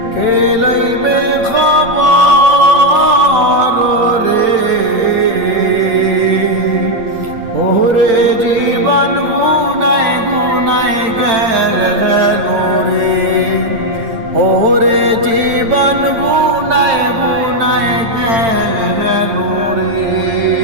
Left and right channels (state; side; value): late; left; 8.9 ms